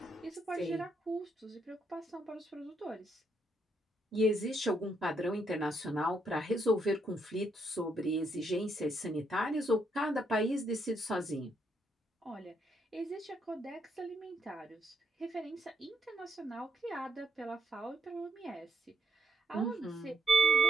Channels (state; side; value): normal; both; correlation 0.75